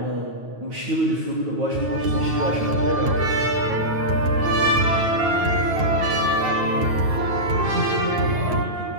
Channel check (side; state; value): left; late; 9.3 ms